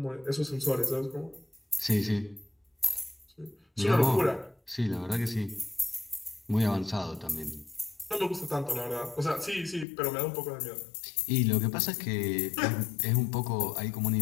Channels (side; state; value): right; drops out; at 9.9 s